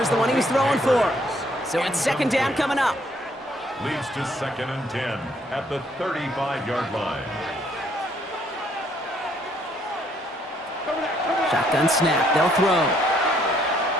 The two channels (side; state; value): both; normal; correlation 0.67